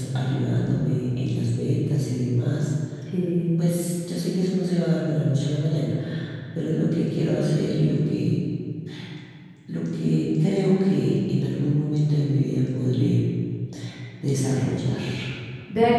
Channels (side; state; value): both; identical; correlation 1.00